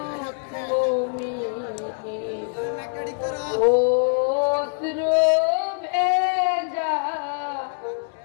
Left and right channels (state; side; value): silent; right; digital silence